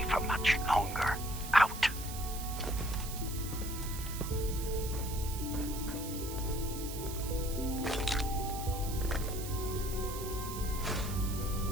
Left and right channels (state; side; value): noise; right; hiss, 9 dB below the sound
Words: for much longer. Out.